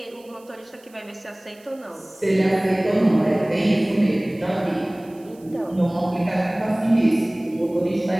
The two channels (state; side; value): noise; right; hiss, 28 dB below the sound